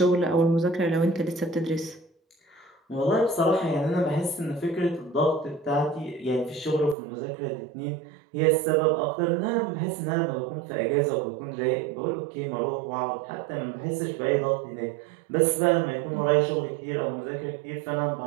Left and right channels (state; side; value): drops out; left; at 7.0 s